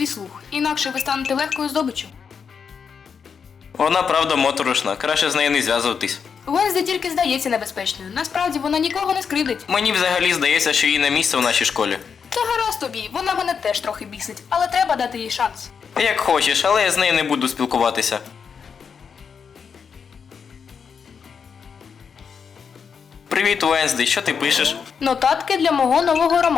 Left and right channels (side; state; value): right; quieter; 6.4 dB